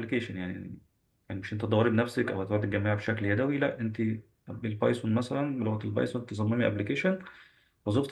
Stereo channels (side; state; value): both; identical; correlation 1.00